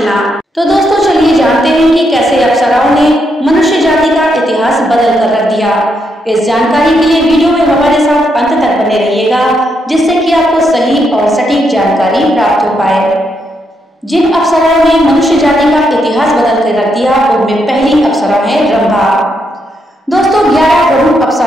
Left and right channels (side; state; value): both; normal; correlation 0.79